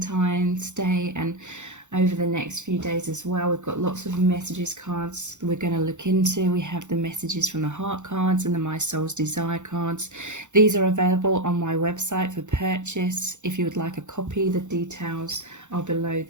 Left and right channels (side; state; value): left; late; 0.84 ms